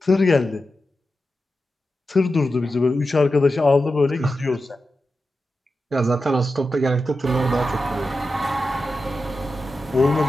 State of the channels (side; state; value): both; normal; correlation 0.91